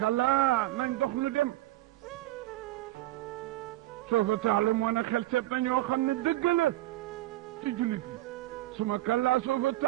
nañ dox lu dem soofa taalamuuna xel seet na ñoo xam ne dëgg la ci jullit yi suma kallaa soofa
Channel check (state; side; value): quieter; left; 16.4 dB